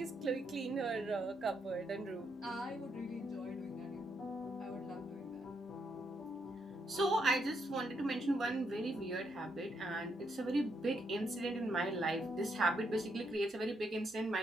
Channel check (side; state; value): both; normal; correlation 0.77